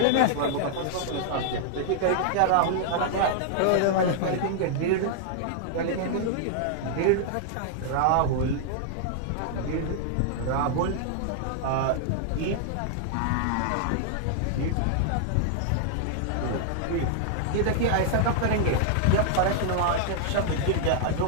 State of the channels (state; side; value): different; both; correlation -0.01